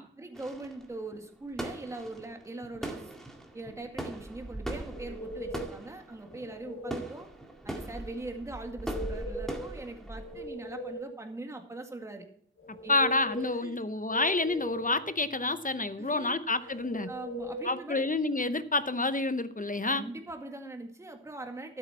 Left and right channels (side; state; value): both; normal; correlation 0.03